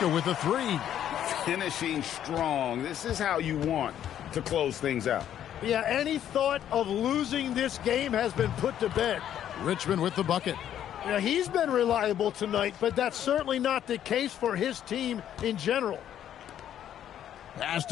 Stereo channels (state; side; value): quieter; right; 10.5 dB